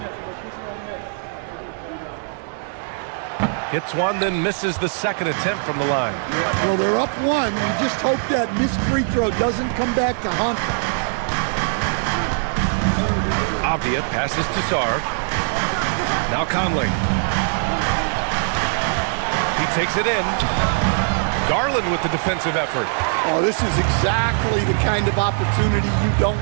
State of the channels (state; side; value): silent; left; 65 dB below the other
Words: Hits one, then misses the second attempt from the line. Well, they're up one. We just hope that missed free throw doesn't come back to haunt them. Avdia passes to Sarr. Now Conley. He takes it in. Garland with the defensive effort. Oh, this is exactly the kind of opportunity you don't